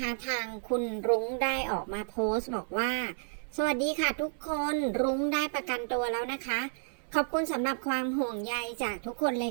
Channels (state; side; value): silent; left; 57 dB below the other